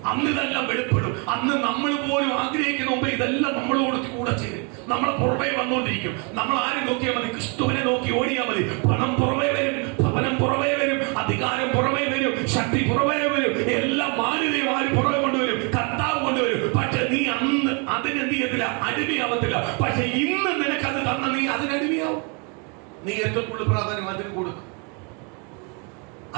അന്ന് ഇതെല്ലാം വെളിപ്പെടും. അന്ന് നമ്മൾ പോലും ആഗ്രഹിക്കുന്ന മുമ്പ് ഇതെല്ലാം നമ്മളോട് കൂടെ ചെയ്യും. നമ്മളെ പുറമേ വന്നുകൊണ്ടിരിക്കും. നമ്മൾ ആരും നോക്കിയാൽ മതി, ക്രിസ്തുവിനെ നോക്കി ഓടിയാൽ മതി. പണം പുറമേ വരും, ഭവനം പുറമേ വരും, അധികാരം പുറമേ വരും, ശക്തി പുറമേ വരും, എല്ലാം മാന്യതയും ആരും പുറമെ കൊണ്ടുവരും, കർത്താവ് കൊണ്ടുവരും. പക്ഷെ നീ അന്ന് അതിനെന്ത് ചെയ്യത്തില്ല, അടിമയാവത്തില്ല. പക്ഷെ ഇന്ന് നിനക്കത് തന്ന നീ അതിനടിമയാവും. നീ ഏറ്റവും കൂടുതൽ പ്രാധാന്യം അതിന് കൊടുക്കും,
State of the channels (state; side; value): quieter; left; 34.3 dB